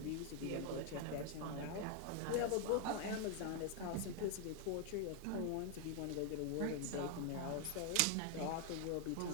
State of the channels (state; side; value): different; both; correlation 0.00